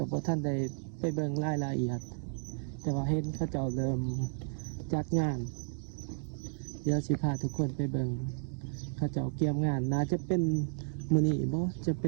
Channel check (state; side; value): silent; left; digital silence